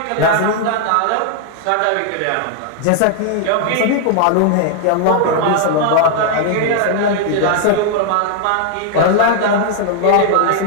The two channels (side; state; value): both; different; correlation 0.00